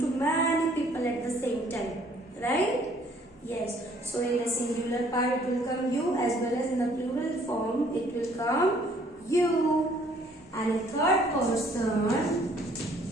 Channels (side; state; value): both; normal; correlation 0.60